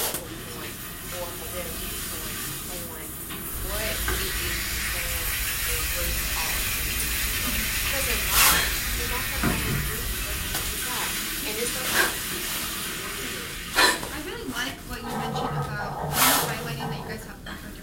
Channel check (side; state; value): both; identical; correlation 1.00